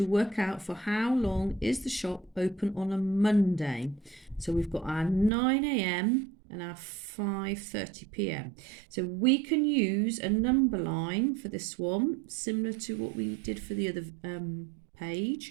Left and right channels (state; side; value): drops out; left; at 5.3 s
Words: work out for how long is the shop open on a Monday. So we've got our 9 a.m. and our 5:30 p.m. So we can use a number line for this one, similar to what we did for the other